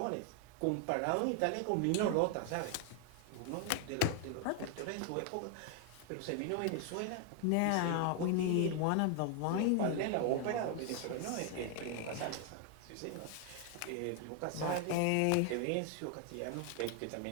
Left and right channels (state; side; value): different; both; correlation 0.00